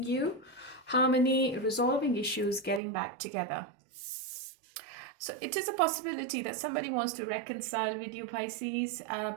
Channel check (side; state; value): left; drops out; at 2.8 s